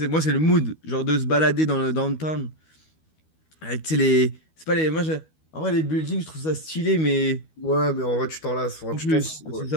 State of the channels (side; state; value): right; late; 13 ms